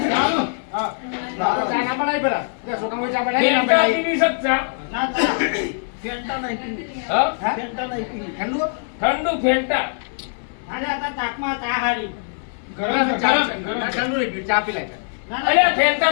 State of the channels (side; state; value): right; silent; digital silence